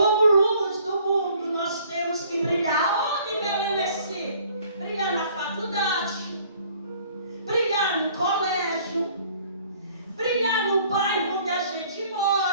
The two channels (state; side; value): inverted; both; correlation -0.56